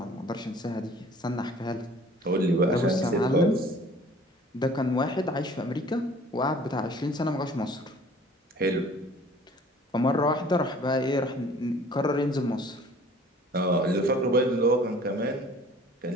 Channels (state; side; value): normal; both; correlation 0.50